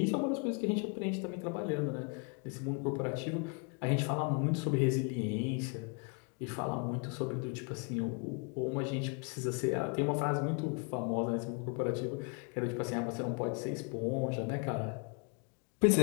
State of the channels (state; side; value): quieter; right; 35.3 dB